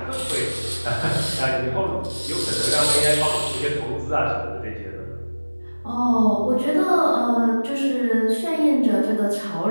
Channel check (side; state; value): both; inverted; correlation -1.00